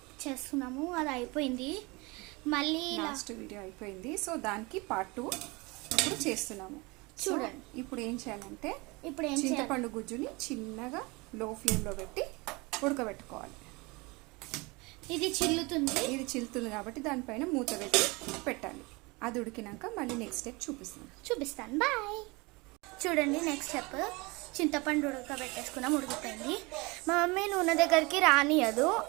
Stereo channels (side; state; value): left; quieter; 25.7 dB